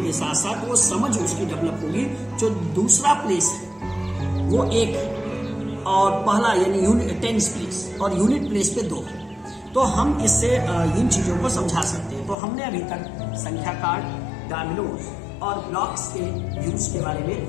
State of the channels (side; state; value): right; drops out; at 12.4 s